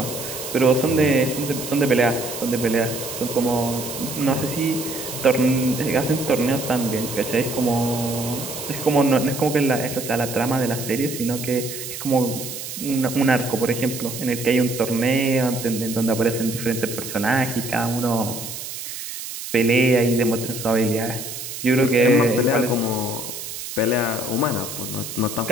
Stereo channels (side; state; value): right; noise; hiss, 8 dB below the sound